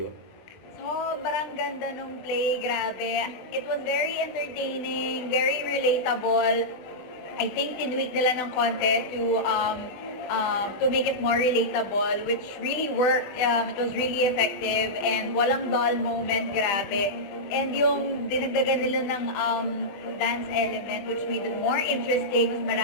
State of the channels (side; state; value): right; late; 20 ms